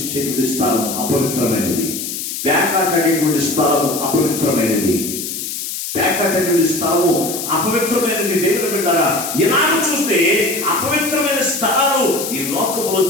స్థలం అపవిత్రమైనది. పేకాట అనేటువంటి స్థలము అపవిత్రమైనది. పేకాట అనేటువంటి స్థలము అపవిత్రమైనది. దేవుని బిడ్డారా, ఇలాగ చూస్తే అపవిత్రమైన స్థలాలు ఈ లోకంలో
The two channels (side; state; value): left; noise; hiss, 5 dB below the sound